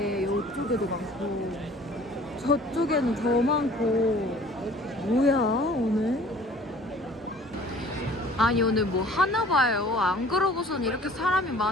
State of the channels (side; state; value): both; normal; correlation 0.50